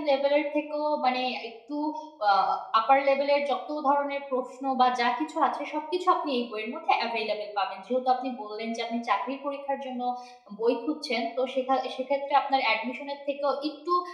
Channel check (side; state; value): both; identical; correlation 1.00